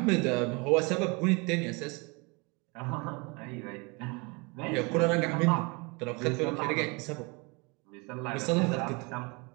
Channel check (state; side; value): quieter; left; 29.0 dB